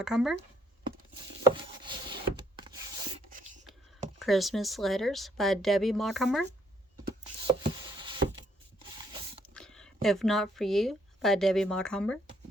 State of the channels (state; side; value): normal; both; correlation 0.68